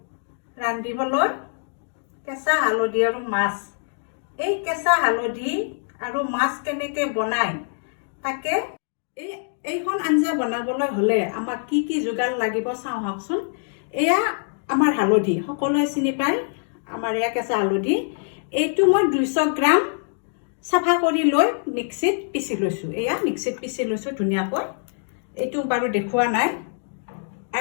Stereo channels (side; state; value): right; silent; digital silence